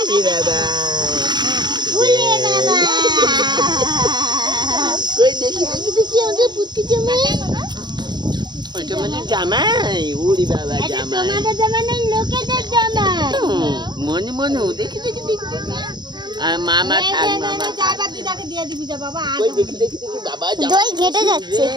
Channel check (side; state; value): left; late; 0.21 ms